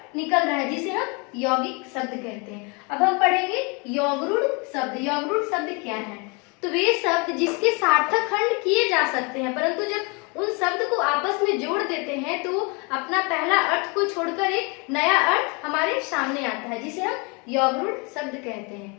निकल रहा है, जिसे हम यौगिक शब्द कहते हैं। अब हम पढ़ेंगे यौगरूढ़ शब्द। यौगरूढ़ शब्द क्या है? तो वे शब्द जिसके सार्थक खंड किए जा सकते हैं, परंतु जब उन शब्द को आपस में जोड़ देते हैं तो अपना पहला अर्थ को छोड़कर एक नया अर्थ हमारे सामने आता है, जिसे हम यौगरूढ़ शब्द कहते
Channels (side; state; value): right; quieter; 31.1 dB